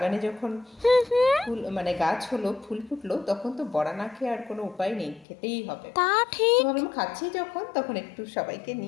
যখন ফুল মানে গাছ হলো, ফুল ফুটলো, তখন তো বড়া না খেয়ে আর কোনো উপায় নেই, খেতেই হবে। তা তো ঠিক। ভাবলাম খাচ্ছি যখন, তখন একটু সবাইকে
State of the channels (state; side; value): drops out; right; at 5.2 s